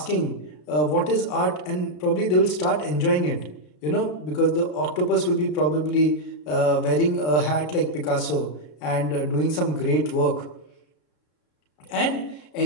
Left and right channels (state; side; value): late; right; 33 ms